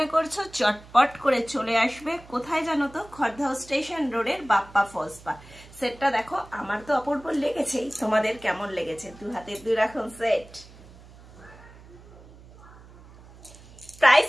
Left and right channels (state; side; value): noise; right; hum, 21 dB below the sound